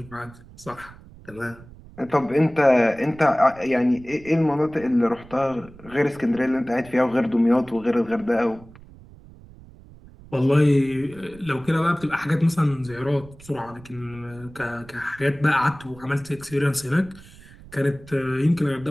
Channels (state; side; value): noise; right; rumble, 21 dB below the sound